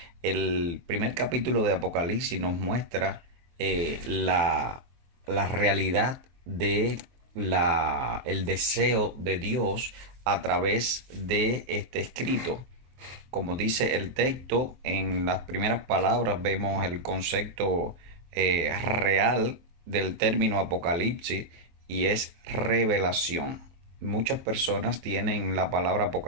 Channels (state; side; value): late; left; 23 ms